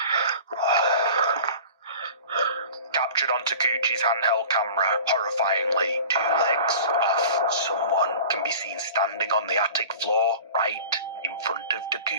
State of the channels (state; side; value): inverted; both; correlation -0.40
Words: Captured on Takuchi's handheld camera, horrifyingly, 2 legs off someone can be seen standing on the attic floor right in front of